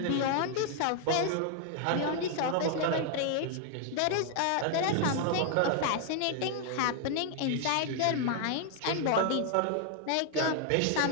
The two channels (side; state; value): both; different; correlation 0.00